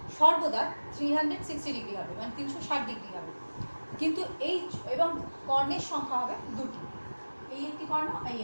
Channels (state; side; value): inverted; both; correlation -1.00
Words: সর্বদা 360 ডিগ্রি হবে, মানে 360 ডিগ্রি হবে। কিন্তু এই এবং কর্ণের সংখ্যা হবে দুটি, এই একটি কর্ণ, এই